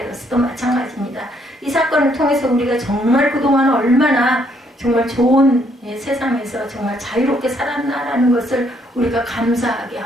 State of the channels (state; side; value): normal; both; correlation 0.69